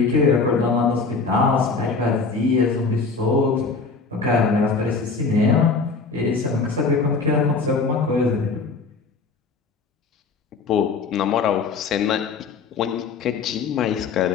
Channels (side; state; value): right; quieter; 4.5 dB